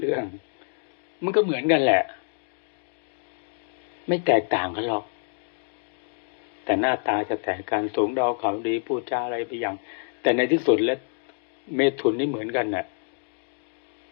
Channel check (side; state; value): right; silent; digital silence